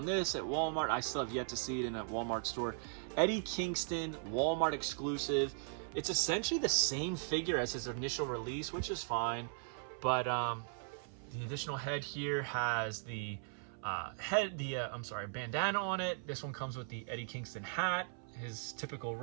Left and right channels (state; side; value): silent; left; 52 dB below the other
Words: this at Walmart. I still have yet to see it in a Walmart store. Eddie Kingston, Walmart exclusive. It's essentially the same figure as his initial release, which is fine. But the additional head here has the bandana on it. This one comes with the Eddie Kingston hat, his typical